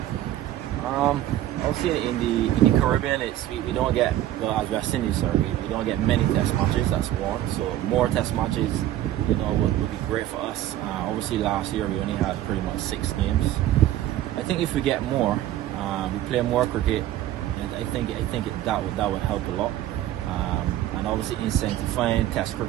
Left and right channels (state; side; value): quieter; left; 13.3 dB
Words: Obviously in the Caribbean, we don't get, well, as West Indies, sorry, we don't get many Test matches. That's one. So more Test matches, you know, would be great for us. Obviously last year we only had pretty much 6 games. I think if we get more, we play more cricket, and I think that would help a lot. And obviously incentivizing Test